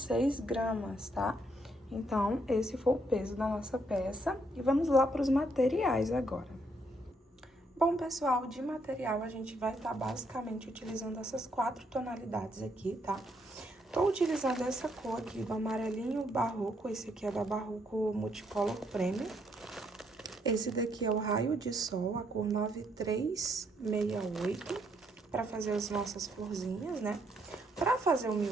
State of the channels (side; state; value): both; normal; correlation 0.73